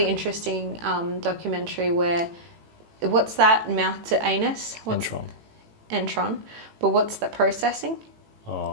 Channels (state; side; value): late; left; 18 ms